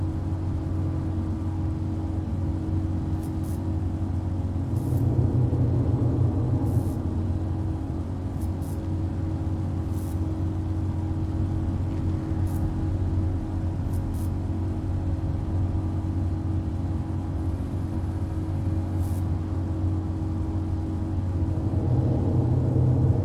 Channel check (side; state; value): both; identical; correlation 1.00